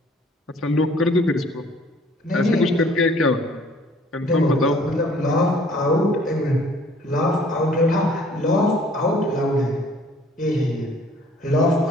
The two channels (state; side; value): normal; both; correlation 0.56